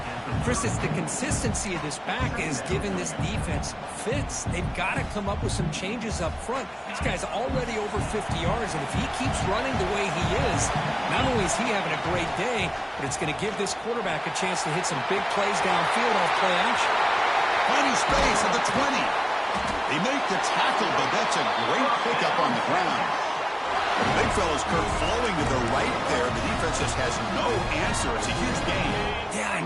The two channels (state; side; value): identical; both; correlation 1.00